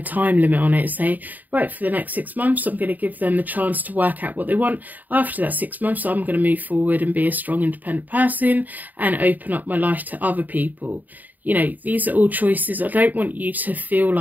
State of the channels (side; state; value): left; late; 0.083 ms